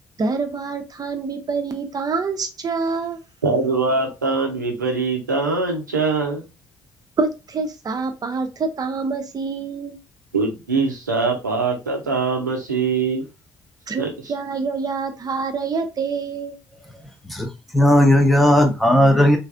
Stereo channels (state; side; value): normal; both; correlation 0.51